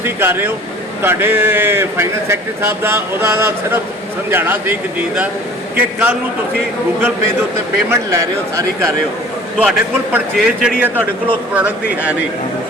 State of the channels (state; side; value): normal; both; correlation 0.47